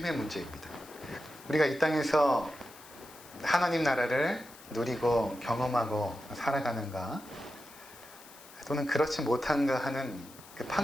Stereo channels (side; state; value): left; noise; hiss, 20 dB below the sound